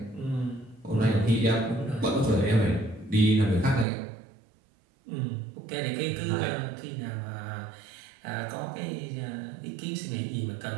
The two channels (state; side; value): drops out; left; at 3.9 s